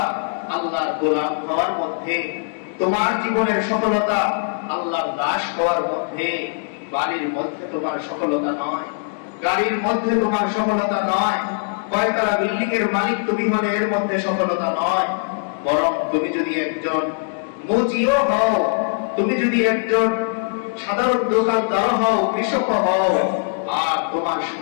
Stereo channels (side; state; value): right; silent; digital silence